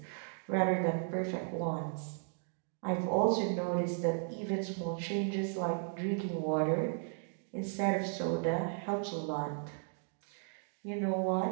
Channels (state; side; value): silent; left; 54 dB below the other